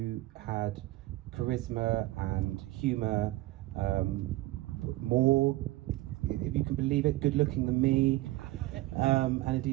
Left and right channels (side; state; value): left; quieter; 17.8 dB